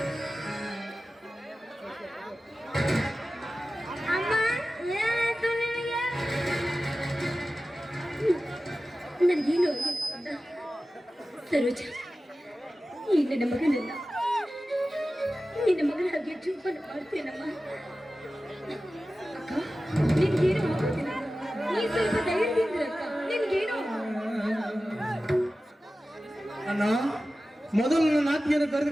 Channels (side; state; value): both; normal; correlation 0.95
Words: ಅಮ್ಮ ಏನಾಯ್ತು ನಿನಗೆ? ನನಗೇನು ಆಗಿಲ್ಲ ಸರೋಜ, ಈ ನನ್ನ ಮಗನನ್ನ ನಿನ್ನ ಮಗನಾಗಿ ಜೋಪಾನ ಮಾಡ್ತೇನಮ್ಮ. ಅಕ್ಕ ನಿನ್ಗೇನು ಆಗೋದಿಲ್ಲ, ನೀ ಸ್ವಲ್ಪ ಧೈರ್ಯದಿಂದ ಅಕ್ಕ, ನಿನ್ಗೇನು ಅಣ್ಣ, ಮೊದಲು ನನ್ನ ನಾತಿಯನ್ನು